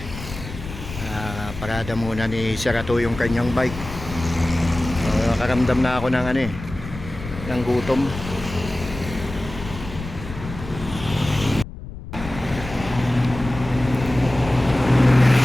Parada muna ni Serato yung kanyang bike. Nakaramdam na ako ng ng gutom.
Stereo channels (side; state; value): left; noise; rumble, 11 dB below the sound